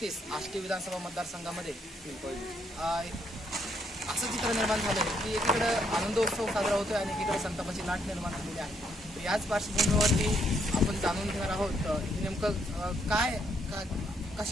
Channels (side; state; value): both; normal; correlation 0.73